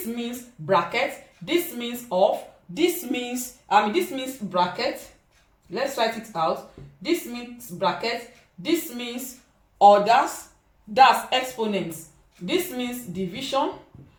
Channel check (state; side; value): identical; both; correlation 1.00